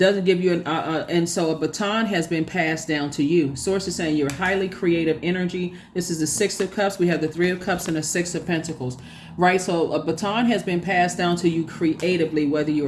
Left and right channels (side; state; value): both; identical; correlation 1.00